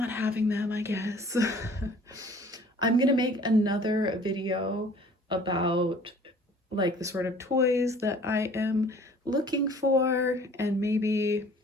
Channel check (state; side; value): normal; both; correlation 0.52